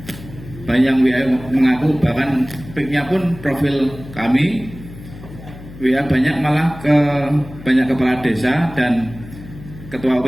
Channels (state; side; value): noise; left; hum, 16 dB below the sound